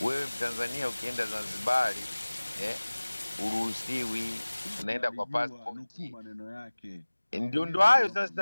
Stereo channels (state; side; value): inverted; both; correlation -1.00